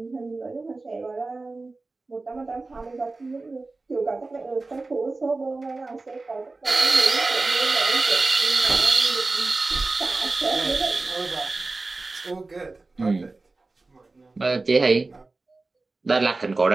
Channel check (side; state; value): left; quieter; 3.5 dB